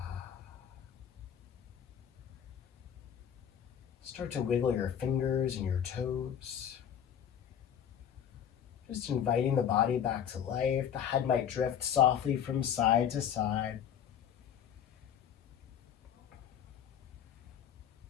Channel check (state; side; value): quieter; right; 9.0 dB